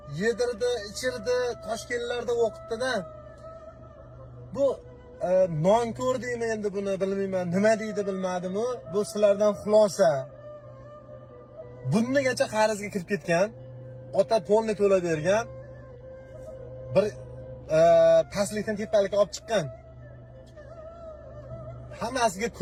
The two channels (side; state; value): both; identical; correlation 1.00